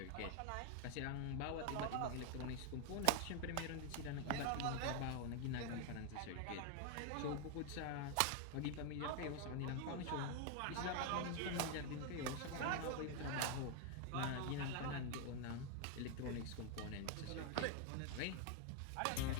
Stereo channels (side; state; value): both; different; correlation 0.00